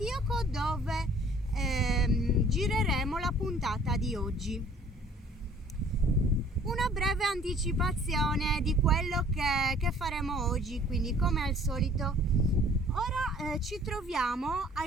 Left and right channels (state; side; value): normal; both; correlation 0.54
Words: dove gireremo la puntata di oggi. Una breve anticipazione di quello che faremo oggi, quindi come al solito. Ora ci troviamo a